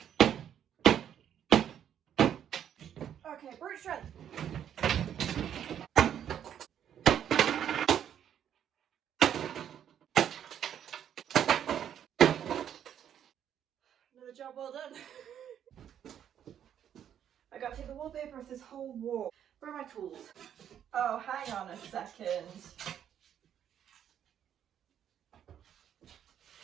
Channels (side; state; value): left; quieter; 9.6 dB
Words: Okay, brute strength. Another job well done. I gotta take the wallpaper off this whole wall. Where are my tools? Oh, hang on a second.